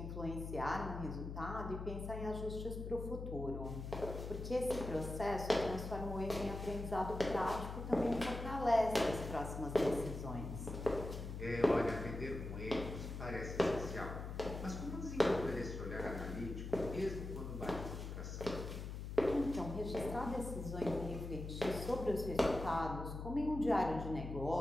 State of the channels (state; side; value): noise; left; hum, 6 dB below the sound